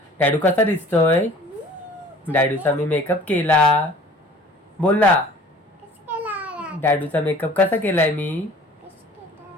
डॅडू कसा दिसतोय? डॅडूचा मी मेकअप केला. बोल ना. डॅडूचा मेकअप कसा केलाय मी?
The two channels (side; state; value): both; normal; correlation 0.49